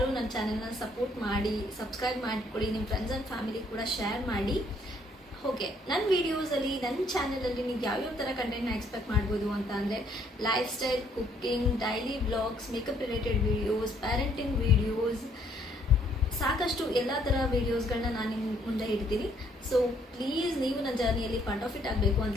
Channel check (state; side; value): normal; both; correlation 0.66